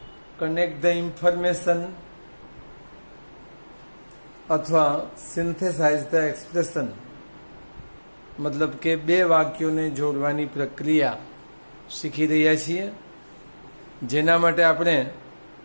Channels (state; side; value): inverted; both; correlation -1.00